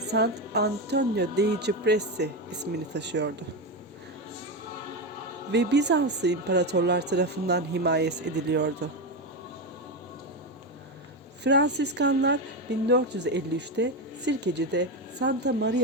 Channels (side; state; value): both; normal; correlation 0.13